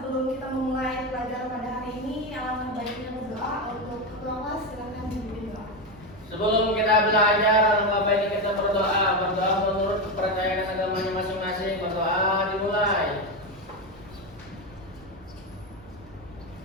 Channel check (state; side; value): noise; right; rumble, 23 dB below the sound